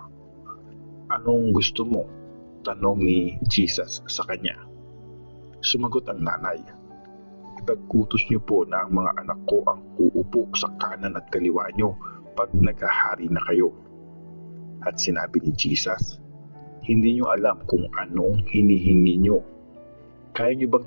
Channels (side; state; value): both; inverted; correlation -1.00